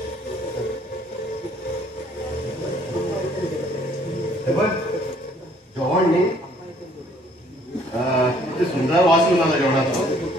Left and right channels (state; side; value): normal; both; correlation 0.60